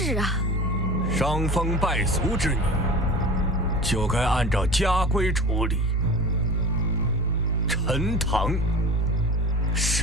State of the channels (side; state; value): both; normal; correlation 0.36